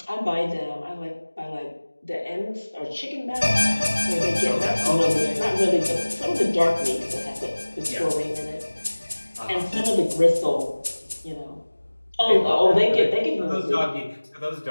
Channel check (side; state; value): both; inverted; correlation -1.00